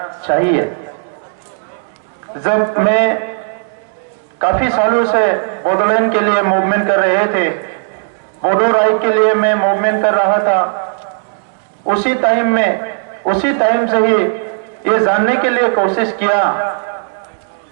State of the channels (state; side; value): silent; left; digital silence